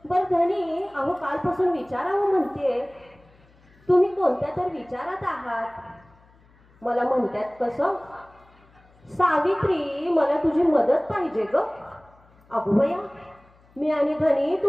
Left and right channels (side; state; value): left; noise; hum, 30 dB below the sound